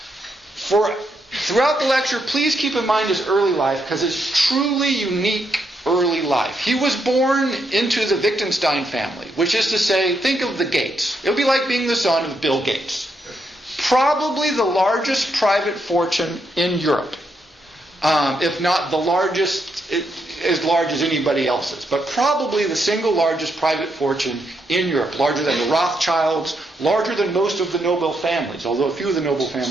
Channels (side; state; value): both; normal; correlation 0.79